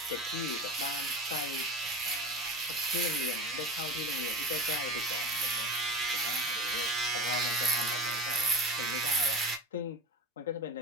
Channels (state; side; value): normal; both; correlation 0.31